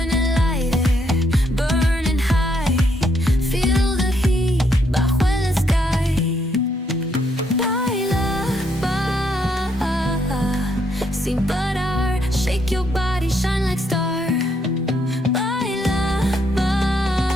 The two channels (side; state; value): both; normal; correlation 0.74